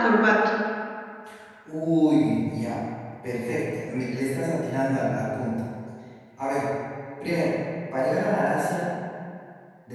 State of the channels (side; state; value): both; identical; correlation 1.00